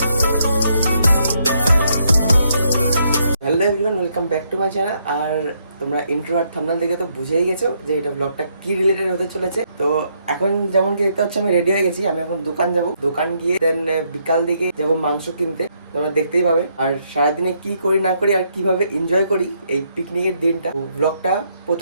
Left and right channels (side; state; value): both; inverted; correlation -0.74